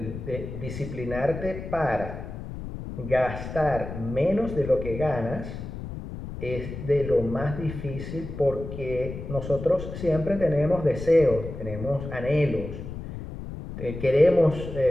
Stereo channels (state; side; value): noise; left; rumble, 9 dB below the sound